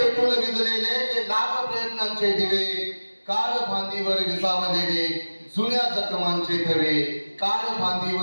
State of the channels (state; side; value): inverted; both; correlation -1.00